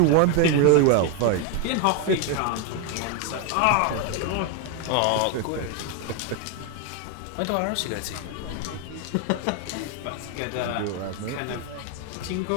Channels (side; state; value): both; different; correlation 0.01